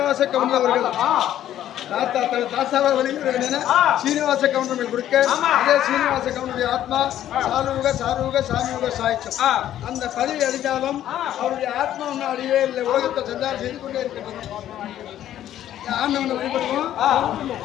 கவுண்டர் அவர்கள் தாத்தாவை வெளியிட வேண்டிய சீனிவாச கவுண்டர் கொடுக்க அதே சீனிவாச கவுண்டருடைய ஆத்மா சாரூக சாமியுக சாய்ச்சம் அந்த பதவி அடைந்தாலும் அவருடைய ஆத்மா ஒன்றும் அடியே இல்லை உலகத்தை சஞ்சாரம் செய்து கொண்டே இருக்கின்றது ஆண்டவனை வழிபடுவோம்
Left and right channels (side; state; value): right; quieter; 11.9 dB